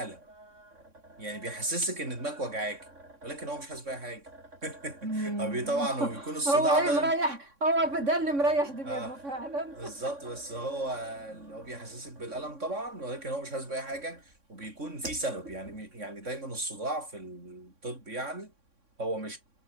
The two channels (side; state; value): left; late; 3.6 ms